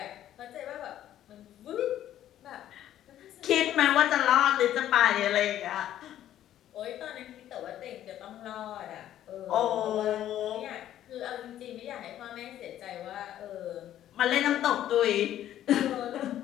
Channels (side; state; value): right; quieter; 12.0 dB